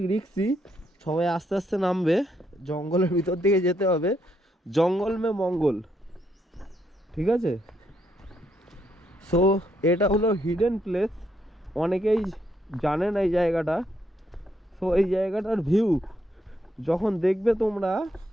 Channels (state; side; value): normal; both; correlation 0.76